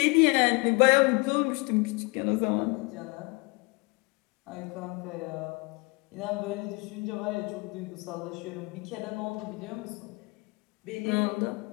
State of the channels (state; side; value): quieter; right; 28.3 dB